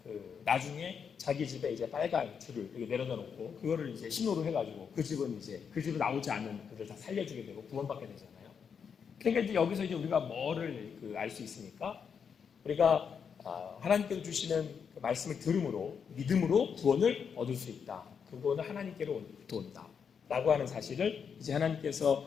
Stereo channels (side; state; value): right; quieter; 6.8 dB